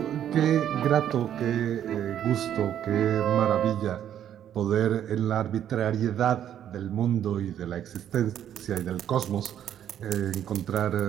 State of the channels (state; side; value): quieter; left; 10.3 dB